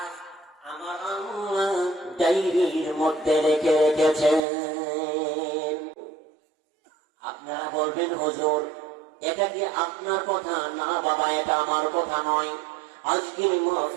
আমার আল্লাহ ডায়েরির মধ্যে রেখে রেখেছেন। আপনারা বলবেন, হুজুর এটা কি আপনার কথা? না বাবা, এটা আমার কথা নয়, আজকের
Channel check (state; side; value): drops out; left; at 4.4 s